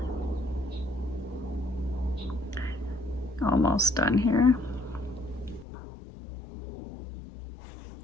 Almost done here.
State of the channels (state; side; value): drops out; right; at 5.7 s